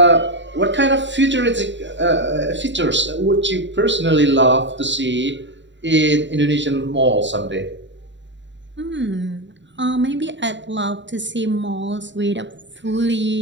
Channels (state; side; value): late; left; 0.53 ms